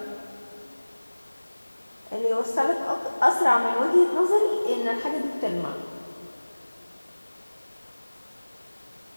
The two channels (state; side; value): inverted; both; correlation -1.00